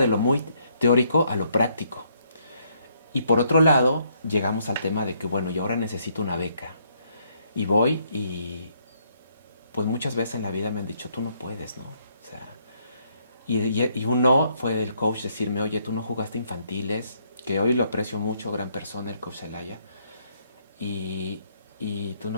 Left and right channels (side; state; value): both; inverted; correlation -0.71